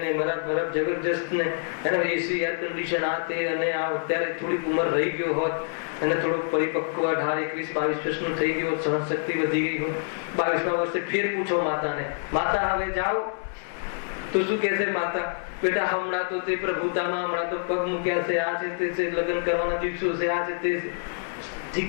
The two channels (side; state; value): right; silent; digital silence